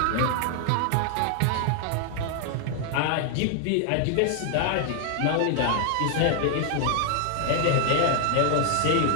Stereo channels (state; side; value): different; both; correlation 0.00